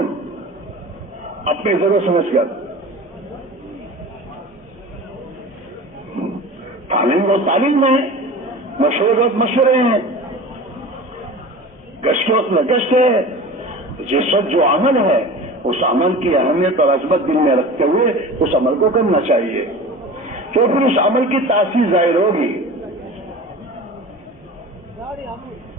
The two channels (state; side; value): normal; both; correlation 0.36